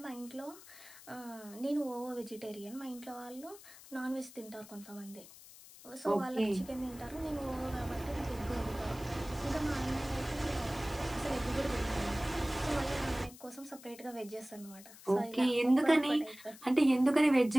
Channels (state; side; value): noise; left; hiss, 19 dB below the sound